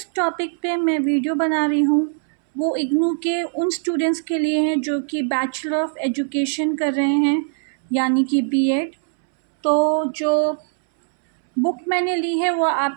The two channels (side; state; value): left; silent; 65 dB below the other